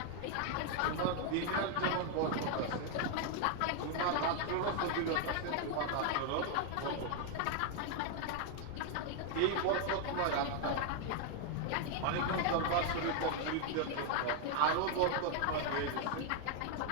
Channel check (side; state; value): both; different; correlation 0.01